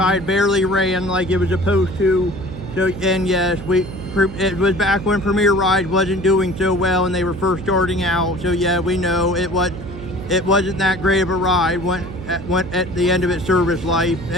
barely ran like it was supposed to. So, and yes, it was back when Premier Ride wasn't doing so well and they were first starting out. So yeah, we know it wasn't that great of a ride. Went at the end of its service life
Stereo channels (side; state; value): right; noise; hum, 11 dB below the sound